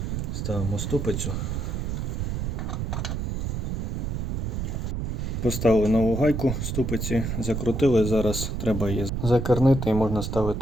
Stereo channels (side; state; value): right; noise; rumble, 2 dB below the sound